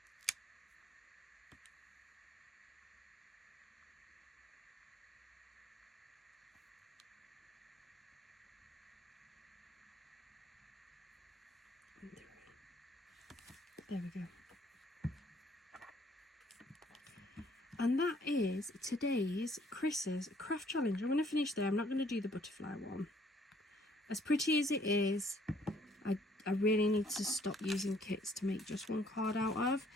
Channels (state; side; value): normal; both; correlation 0.62